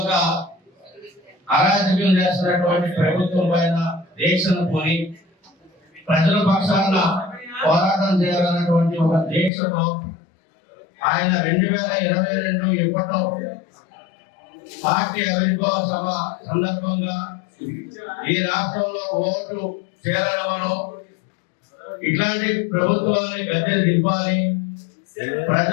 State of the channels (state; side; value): drops out; right; at 9.5 s